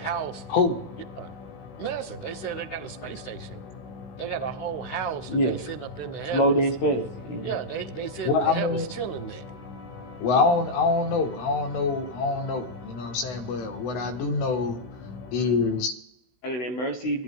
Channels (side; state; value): right; late; 16 ms